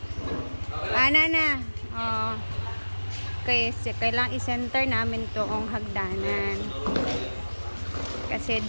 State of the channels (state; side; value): inverted; both; correlation -1.00